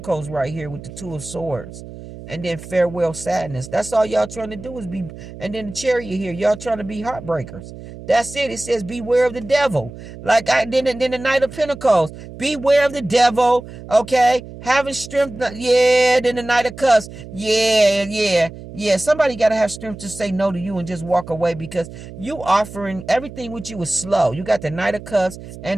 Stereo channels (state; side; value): noise; right; hum, 14 dB below the sound